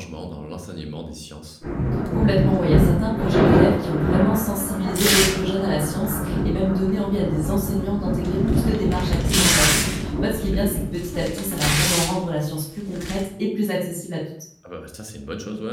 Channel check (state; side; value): identical; both; correlation 1.00